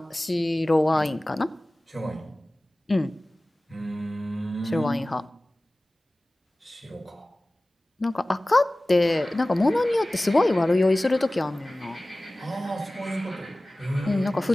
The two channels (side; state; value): both; normal; correlation 0.98